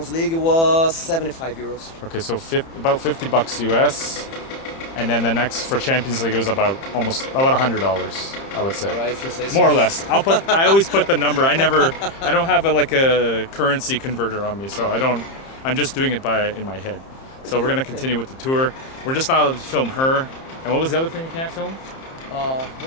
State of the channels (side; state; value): right; late; 30 ms